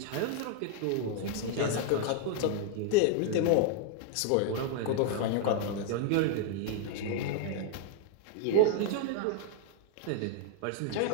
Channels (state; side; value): different; both; correlation 0.00